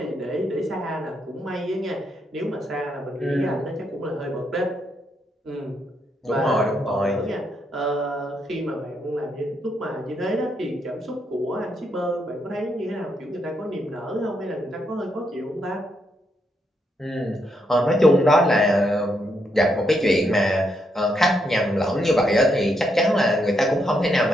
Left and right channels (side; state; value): both; normal; correlation 0.78